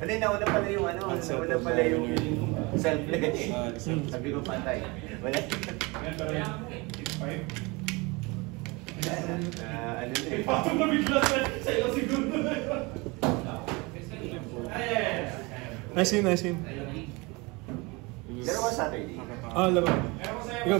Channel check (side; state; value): left; quieter; 26.0 dB